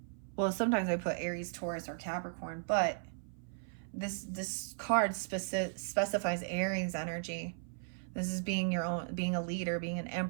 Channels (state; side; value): silent; left; 54 dB below the other